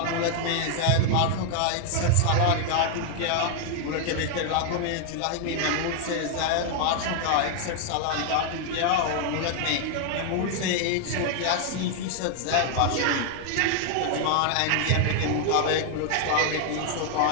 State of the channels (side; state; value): both; different; correlation 0.00